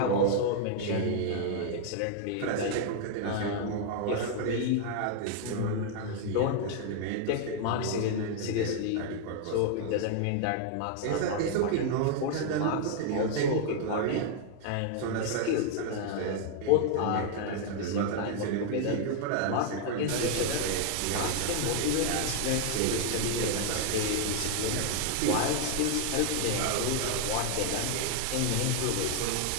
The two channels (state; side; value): different; both; correlation 0.00